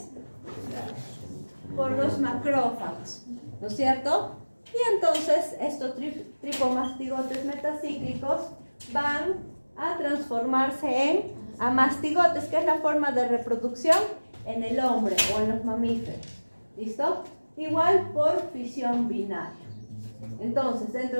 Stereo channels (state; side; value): inverted; both; correlation -1.00